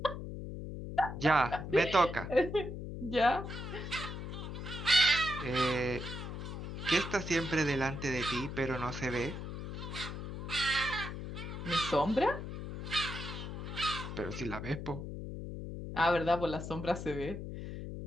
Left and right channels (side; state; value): left; noise; hum, 7 dB below the sound